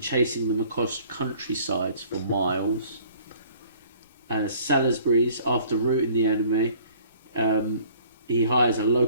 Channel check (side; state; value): both; inverted; correlation -0.55